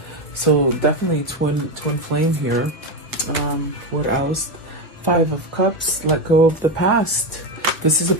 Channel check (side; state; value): both; normal; correlation 0.13